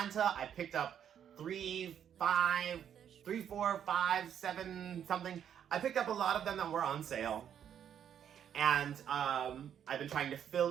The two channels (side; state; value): left; quieter; 9.1 dB